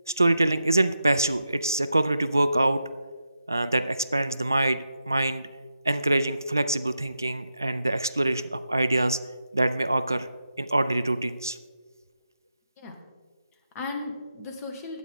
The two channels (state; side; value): inverted; both; correlation -0.86